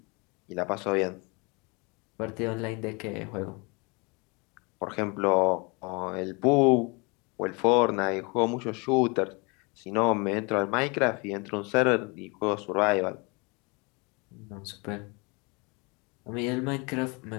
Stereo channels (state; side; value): quieter; right; 29.5 dB